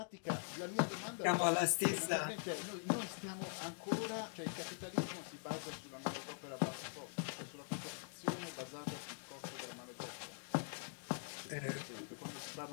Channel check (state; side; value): silent; right; digital silence